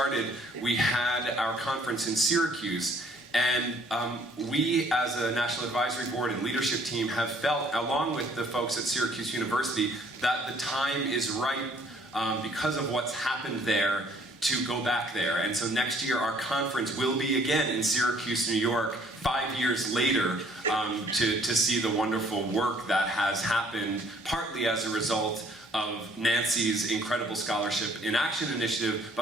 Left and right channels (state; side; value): normal; both; correlation 0.60